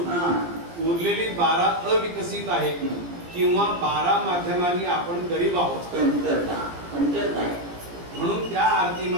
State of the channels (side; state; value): left; late; 17 ms